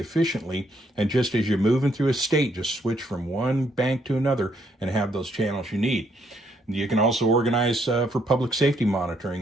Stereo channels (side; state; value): both; normal; correlation 0.72